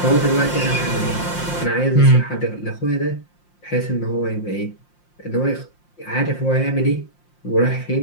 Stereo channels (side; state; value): right; late; 5.7 ms